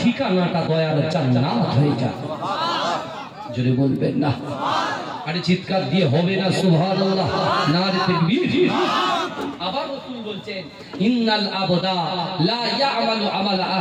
দয়ার জান্নাত হয়ে যায়। জোরে বলবেন না? আরে চিৎকার দিয়ে হবে না সুবহানাল্লাহ, নারে তাকবীর। আবার রাসূল বলছেন ইন্নাল আবদা লা ইয়ামালু আমালা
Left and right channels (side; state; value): both; identical; correlation 1.00